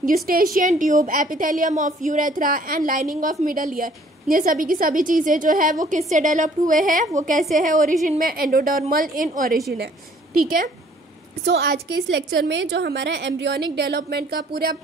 Eustachian tube, epithelium of urethra and lining of middle ear. ये सभी की सभी चीज़ें जो है वो किससे developed हुए हैं, वो कैसे है ओरिजिन में, एंडोडर्मल इन ओरिजिन है। ठीक है, सो आज के इस लेक्चर में जो हमारा एम्ब्रियोनिक डेवलपमेंट का पूरा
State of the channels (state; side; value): normal; both; correlation 0.58